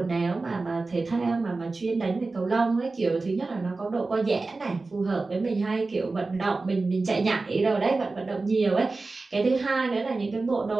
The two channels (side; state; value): left; quieter; 3.6 dB